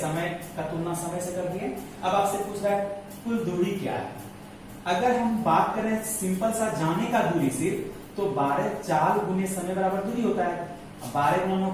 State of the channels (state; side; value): identical; both; correlation 1.00